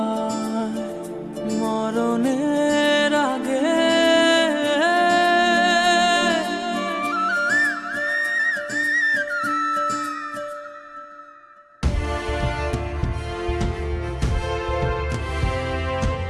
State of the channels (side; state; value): both; identical; correlation 1.00